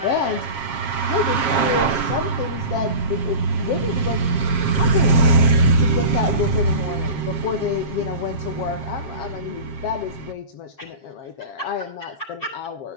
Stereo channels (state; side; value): late; right; 7.5 ms